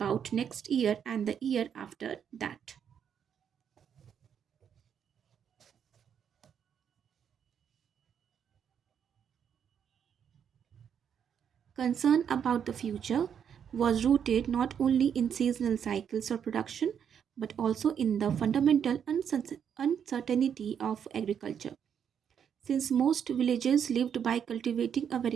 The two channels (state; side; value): quieter; left; 8.1 dB